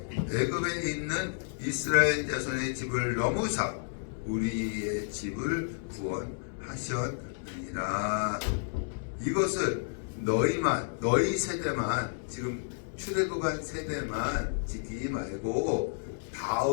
애굽에 있는 이스라엘 자손의 집을 넘으사 우리의 집을 구원하시리라. 하셨느니라. 이것을 너희 세대만, 지금 출애굽한 세대만 지키지 말고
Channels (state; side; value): silent; right; digital silence